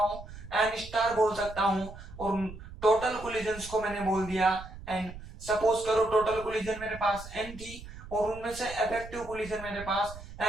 एन स्टार बोल सकता हूँ। और टोटल कोलिजन्स को मैंने बोल दिया एन। सपोज करो टोटल कोलिजन मेरे पास एन थी और उनमें से इफेक्टिव कोलिजन मेरे पास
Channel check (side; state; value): right; noise; rumble, 14 dB below the sound